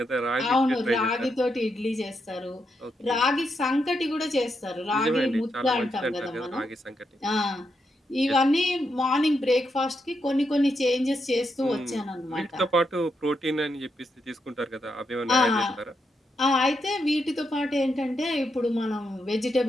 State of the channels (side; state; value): both; normal; correlation 0.82